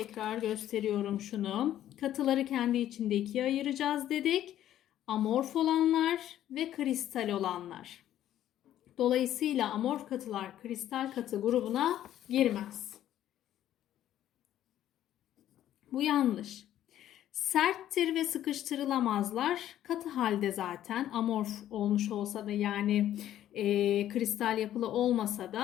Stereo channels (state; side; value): quieter; right; 12.0 dB